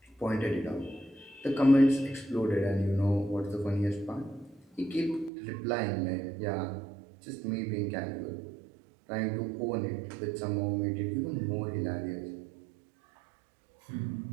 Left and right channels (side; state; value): left; drops out; at 5.3 s